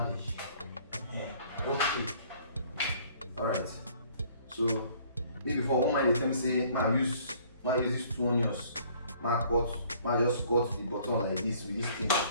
Okay. Alright. So maybe for one man dey tell me say ma use these 2 onions, ma just cut the bottom like this with this thing,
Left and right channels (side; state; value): both; inverted; correlation -0.57